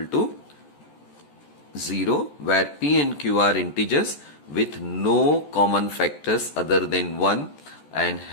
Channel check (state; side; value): late; right; 14 ms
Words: to 0, where p and q are integers with no common factors other than 1 and